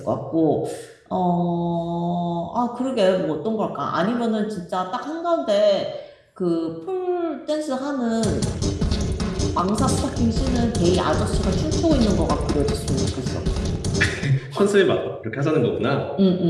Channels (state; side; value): identical; both; correlation 1.00